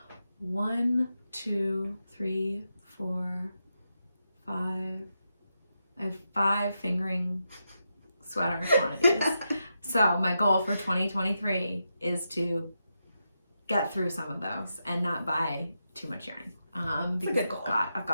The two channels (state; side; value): inverted; both; correlation -0.86